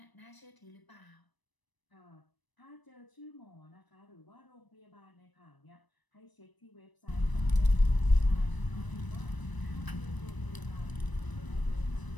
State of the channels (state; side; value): late; right; 1.0 ms